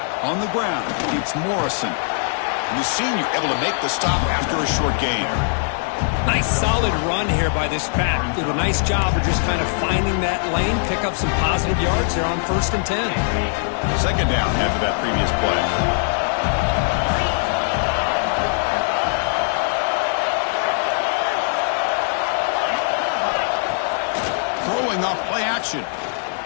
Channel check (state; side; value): silent; right; digital silence